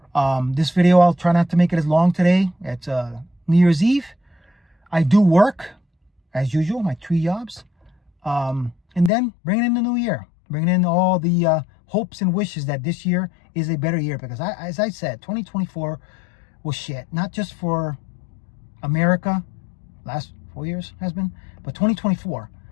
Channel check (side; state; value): right; drops out; at 9.1 s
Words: This video, I'll try not to make it as long today. It's New Year's Eve. I do work, as usual, my 3 jobs, and then bringing in the new year, bringing in all the hopes and wishes that this year is a better year, because as I said, 2024 was shit, not just for America, last 4 years has been, but 2024.